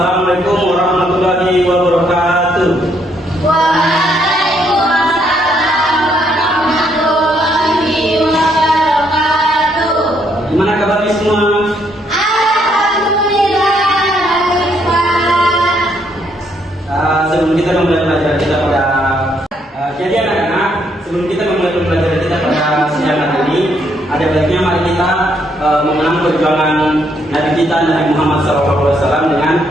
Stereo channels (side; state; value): both; normal; correlation 0.72